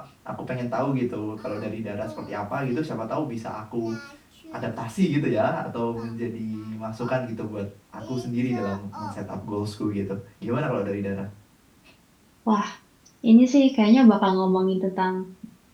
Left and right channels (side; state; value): both; identical; correlation 1.00